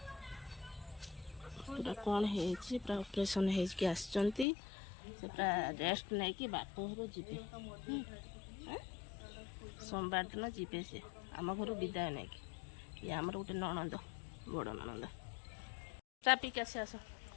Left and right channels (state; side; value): drops out; right; at 4.5 s